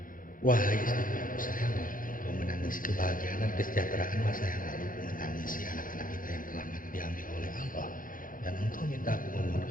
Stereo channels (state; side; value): late; right; 0.40 ms